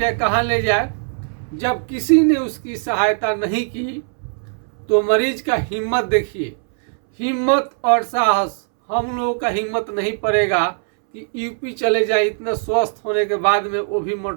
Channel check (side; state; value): left; silent; 64 dB below the other